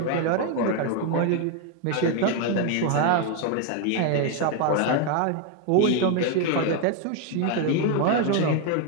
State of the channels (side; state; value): both; different; correlation 0.01